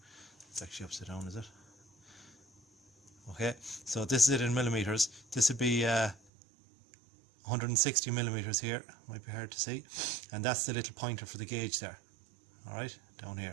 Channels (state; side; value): drops out; left; at 6.2 s